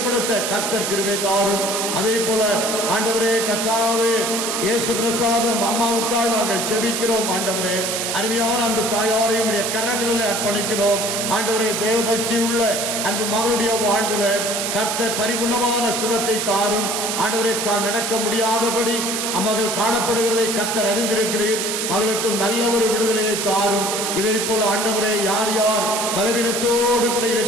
கர்த்தர் கிருபை தாரும். அதே போல ஆண்டவரே கர்த்தாவே இயேசு பிரசாதம் அம்மாவுக்காக நாங்கள் ஜெபிக்கிறோம். ஆண்டவரே அருமையான அன்பு தாயாரையும் கரங்களில் அர்ப்பணிக்கிறோம். ஆண்டவரே தேவபக்தி உள்ள அன்பு மகளுடைய வாழ்வில் கர்த்தர் பரிபூர்ணமான சுகத்தை தாரும். ஆண்டவரே நடக்க முடியாதபடி அம்மகள் காணப்படுகிறதை கர்த்தர் அறிந்திருக்கிறீர். மகளுக்கு நல்ல ஒரு விடுதலையை தாரும். இதை போல ஆண்டவரே யார் யார் பலவீனத்தோடு கூட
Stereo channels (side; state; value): right; noise; hiss, 1 dB below the sound